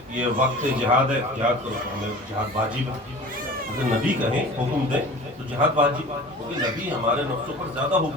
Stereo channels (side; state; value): both; normal; correlation 0.40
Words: یہ وقت جہاد ہے، جہاد کرو، ہمیں جہاد واجب ہے. اگر نبی کہیں حکم دیں تو جہاد واجب ہے، کیونکہ نبی ہمارے نفسوں پر زیادہ